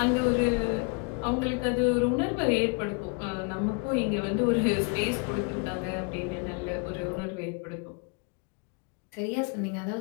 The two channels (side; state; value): right; quieter; 35.6 dB